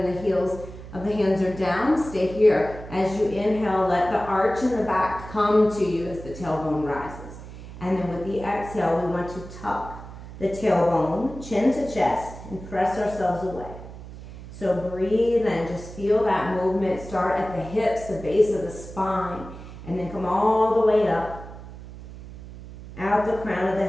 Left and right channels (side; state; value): right; noise; hum, 14 dB below the sound